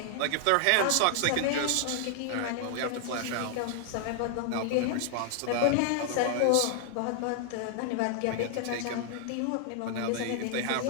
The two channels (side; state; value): both; different; correlation 0.00